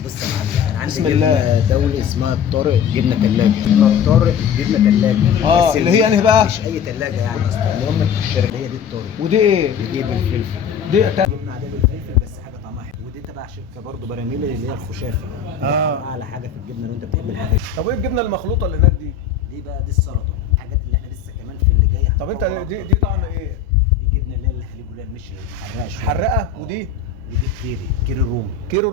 بص يا معلم انا عندي بسم الله. جبنه دولي اسمها الطارق جبنه ثلاجه. جبنه الطارق جبنه ثلاجه. اه اللي هي انهي بقى؟ مش اي ثلاجه يعني اصلا المهم الشركه هي دي الطارق. ودي ايه؟ ودي بالفلفل. دي جبنه عاديه بالفلفل بس حاجه طعمها حلو. ودي تبع شركه برضه براميل اللي هي الخشافه. اعلى حاجه في الجبنه لو انت بتحب الحاجات دي. طب وايه الجبنه المخلوطه اللي هناك دي؟ دي بقى دي السلطه الحاجات اللي احنا لسه كمان في اللي جاي. طب انت دي طعم ايه؟ دي جبنه اللي هي الحليب اللي هي مش حراقه شوية. حرقه. ودي ودي كيري رومي. كيرو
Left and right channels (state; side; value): quieter; right; 7.2 dB